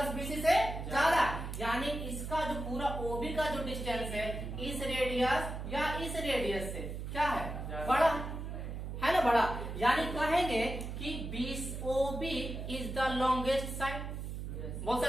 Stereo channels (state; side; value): noise; right; hum, 6 dB below the sound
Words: BC से ज्यादा, यानी इसका जो पूरा OB का जो डिस्टेंस है इस रेडियस या इस रेडियस से क्या है, बड़ा है ना, बड़ा। यानी कहेंगे कि OB is the longest side, बोल